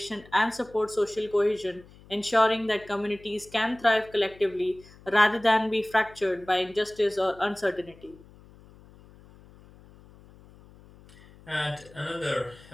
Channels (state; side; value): noise; left; hum, 23 dB below the sound